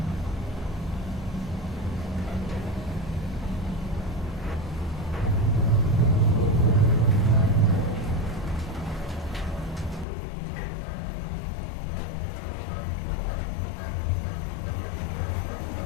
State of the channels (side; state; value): right; drops out; at 10.1 s